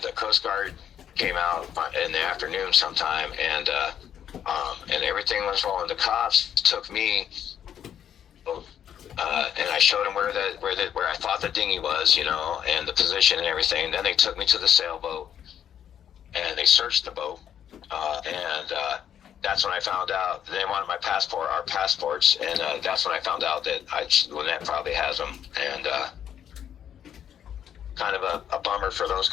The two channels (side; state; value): right; quieter; 9.4 dB